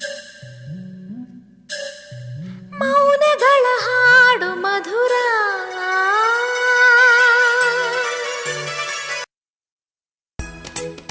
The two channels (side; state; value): both; identical; correlation 1.00